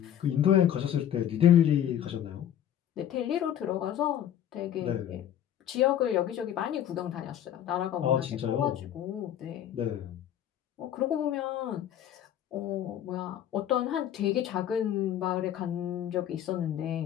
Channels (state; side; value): quieter; right; 10.6 dB